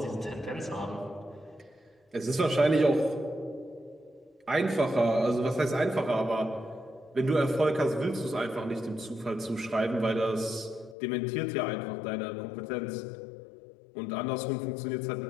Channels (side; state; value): right; drops out; at 11.0 s